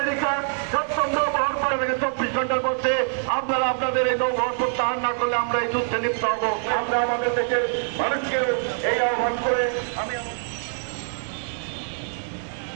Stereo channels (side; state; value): left; silent; digital silence